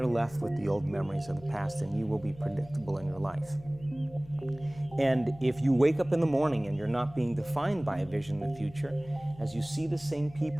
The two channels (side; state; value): left; noise; hum, 20 dB below the sound